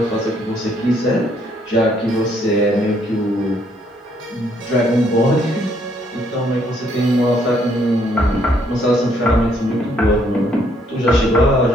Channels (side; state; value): both; normal; correlation 0.68